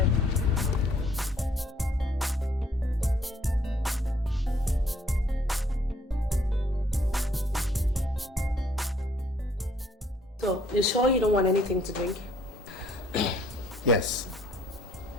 So, you sure you don't want anything to drink? Yes.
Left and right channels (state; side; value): normal; both; correlation 0.64